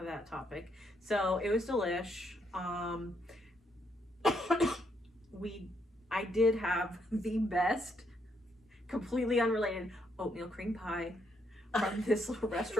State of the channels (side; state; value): both; normal; correlation 0.75